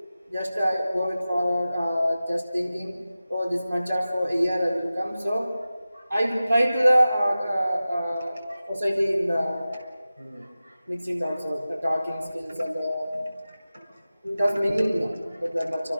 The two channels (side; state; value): both; inverted; correlation -0.95